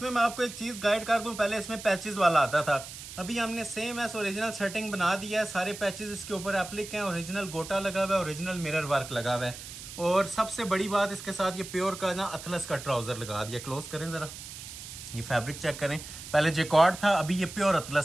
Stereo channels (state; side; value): noise; right; hiss, 12 dB below the sound